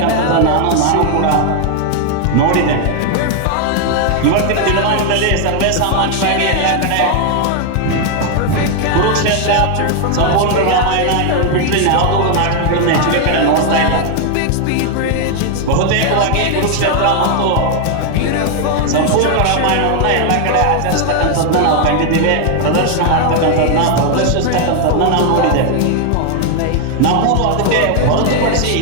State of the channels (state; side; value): different; both; correlation 0.00